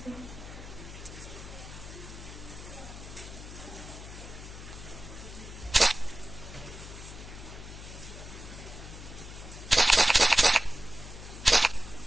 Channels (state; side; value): noise; left; hum, 12 dB below the sound